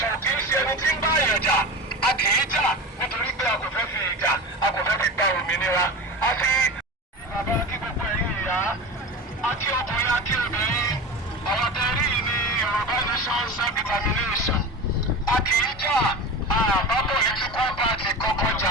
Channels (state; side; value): normal; both; correlation 0.29